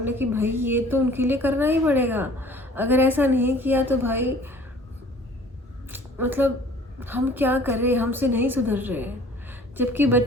कि भाई ये तो उनके लिए करना ही पड़ेगा, अगर ऐसा नहीं किया तो भाई मतलब हम क्या करें, हमसे नहीं सुधर रहे हैं। जबकि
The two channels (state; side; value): normal; both; correlation 0.51